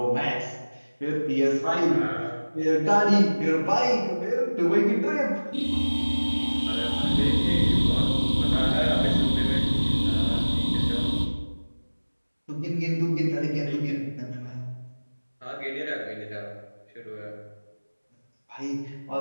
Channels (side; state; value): both; inverted; correlation -1.00